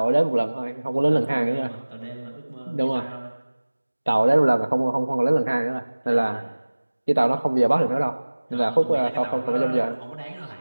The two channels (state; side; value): inverted; both; correlation -1.00